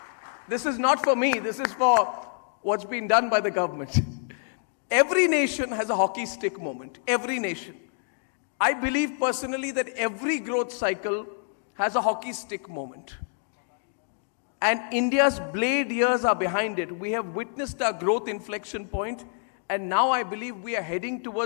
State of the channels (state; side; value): silent; right; 58 dB below the other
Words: this is not for me, this is for what's been done by the government. Every nation has a hockey stick moment. Every nation. I believe personally that every growth cycle has a hockey stick moment. And India's blade years are behind it. We have witnessed our growth inflection point, and now I believe we are heading